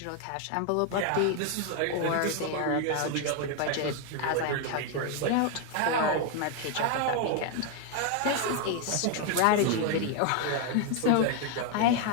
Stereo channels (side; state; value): both; different; correlation 0.01